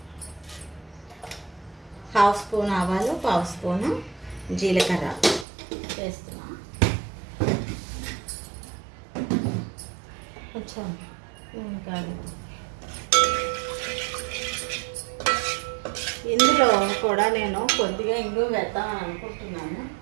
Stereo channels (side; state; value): left; drops out; at 5.5 s